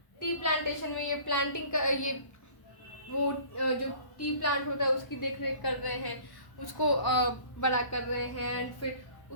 टी प्लांटेशन में ये प्लांटिंग का, ये वो जो टी प्लांट होता है उसकी देख रेख कर रहे हैं, उसको बड़ा कर रहे हैं। एंड फिर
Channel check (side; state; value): right; late; 1.1 ms